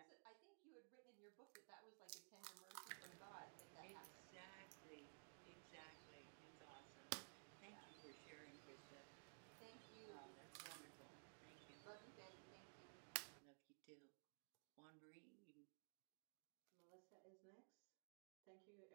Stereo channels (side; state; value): left; silent; digital silence